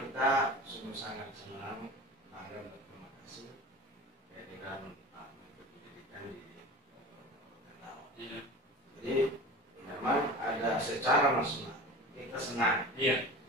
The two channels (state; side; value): normal; both; correlation 0.35